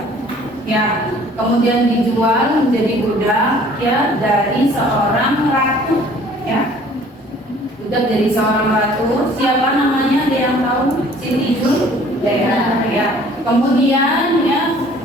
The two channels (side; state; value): both; normal; correlation 0.53